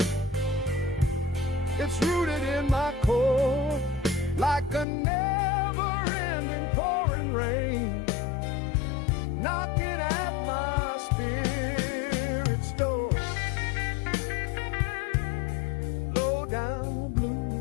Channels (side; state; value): right; drops out; at 4.9 s